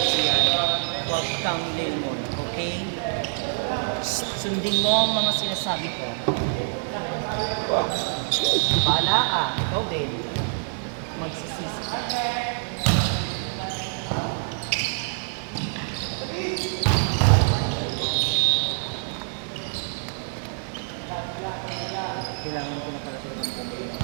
huwag kang lemon, okay? Sundin mo ang mga sinasabi ko. Bahala ka, ikaw din. Magsisisi ka. Kailangan ko na pala talagang bumili ng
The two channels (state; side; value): silent; left; digital silence